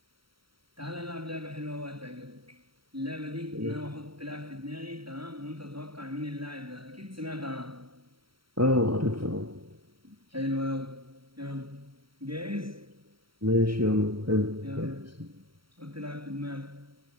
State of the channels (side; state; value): left; late; 0.74 ms